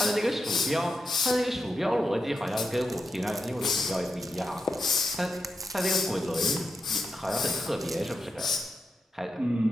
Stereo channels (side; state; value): both; normal; correlation 0.86